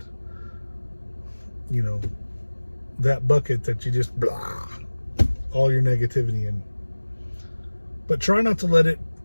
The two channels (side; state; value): both; inverted; correlation -1.00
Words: that bucket that you just blah, all your negativity in. But try not to let it